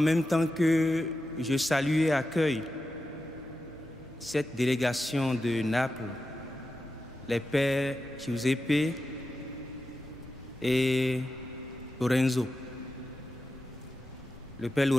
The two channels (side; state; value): both; normal; correlation 0.90